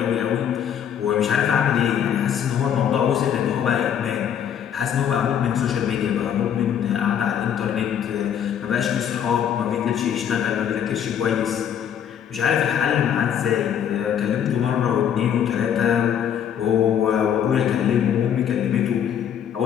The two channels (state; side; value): quieter; right; 9.0 dB